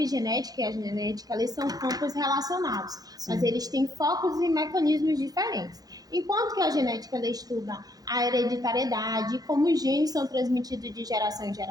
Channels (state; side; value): late; left; 0.18 ms